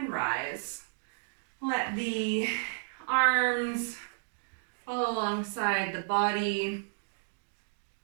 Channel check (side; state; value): left; silent; digital silence